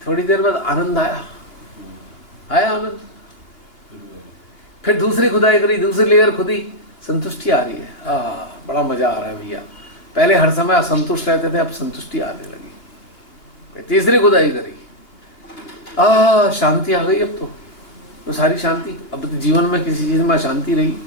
थोड़ी देर बाद आनंद आया आनंद, फिर दूसरी खुदाई करी, दूसरी लेयर खुदी, संतुष्टि आ रही है। बड़ा मजा आ रहा है भैया। पहले हर समय असंतुष्ट रहते थे, अब संतुष्टि आने लगी। तीसरी खुदाई करी, शांति आ गई। अब तो सारी शांति, अब तो जीवन में किसी चीज में अशांति रही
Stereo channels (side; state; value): right; late; 2.8 ms